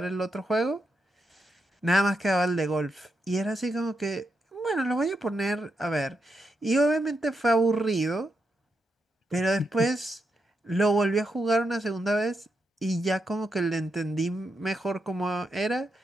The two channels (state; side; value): normal; both; correlation 0.84